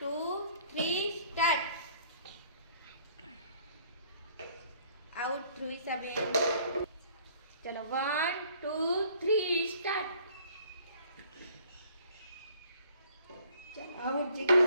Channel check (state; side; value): inverted; both; correlation -0.58